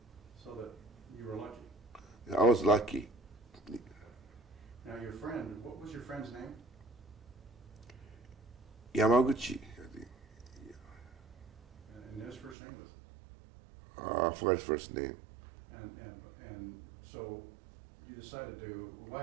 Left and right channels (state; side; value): drops out; left; at 12.6 s